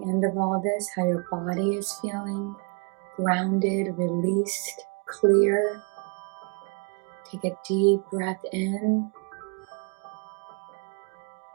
of all this, how your body is feeling, grounded, released, clear. Take a deep breath in,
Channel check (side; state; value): left; quieter; 34.0 dB